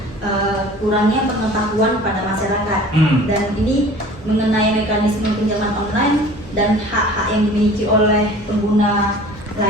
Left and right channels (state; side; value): normal; both; correlation 0.45